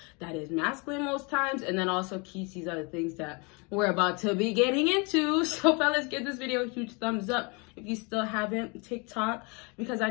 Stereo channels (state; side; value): quieter; right; 30.6 dB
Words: That is masculine most times, and then also keeps these other things that we're about to be getting into. So fellas, give this video a huge thumbs up if you still haven't. TikTok, because I